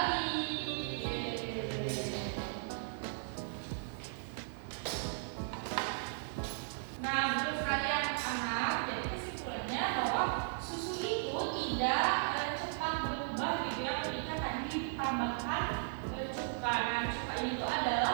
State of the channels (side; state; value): left; silent; digital silence